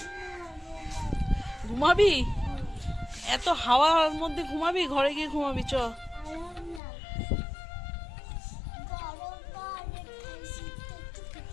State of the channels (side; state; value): right; drops out; at 6.8 s